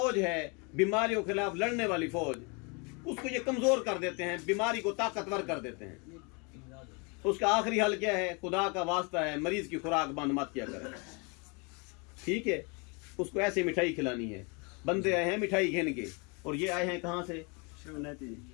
है बीमारियों के खिलाफ लड़ने वाली फौज, उसको ये कमजोर कर देते हैं, बीमारी को ताकतवर कर देते हैं। उसका आखिरी हल क्या है? खुदा का वास्ता है मरीज की खुराक बंद मत किया करें, ठीक है? उसको ऐसे मिठाई खिलानी है। बंदे आए हैं मिठाई घेन के, और ये आए हैं कहाँ से?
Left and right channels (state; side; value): quieter; right; 31.9 dB